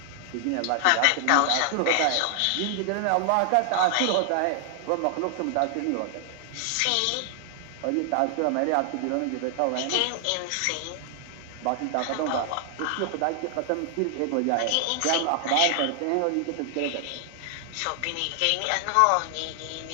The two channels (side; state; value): both; different; correlation 0.00